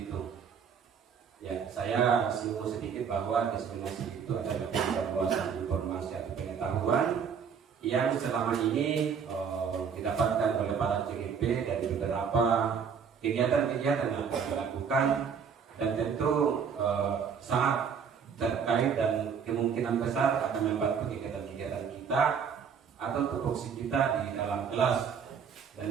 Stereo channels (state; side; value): quieter; left; 6.8 dB